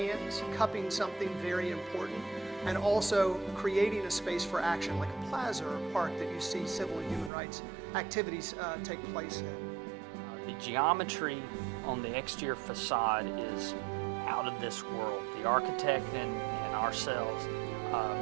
cupping something very important, and also creating a space for action, like a plaza or a park that you see civil and human rights activities take place in. The geometry on the exterior facade is out of this world. The architect and ourselves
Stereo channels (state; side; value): drops out; left; at 7.3 s